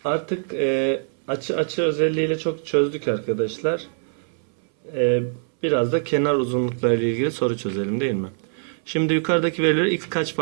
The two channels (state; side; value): silent; left; 61 dB below the other